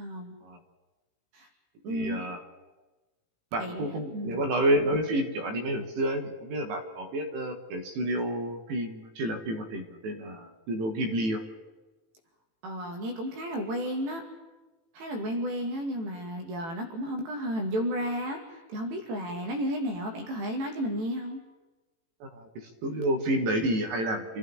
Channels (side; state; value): left; late; 18 ms